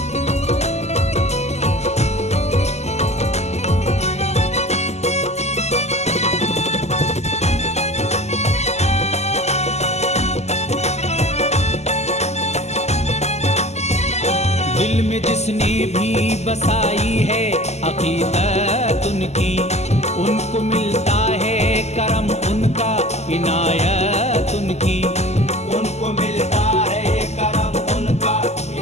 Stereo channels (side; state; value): right; late; 0.32 ms